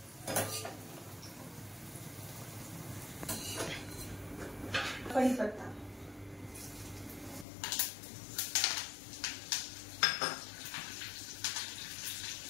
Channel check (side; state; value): right; drops out; at 7.5 s